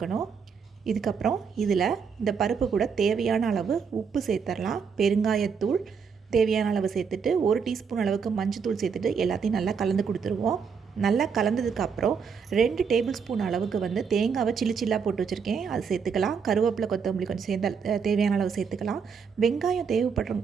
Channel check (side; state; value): left; quieter; 6.1 dB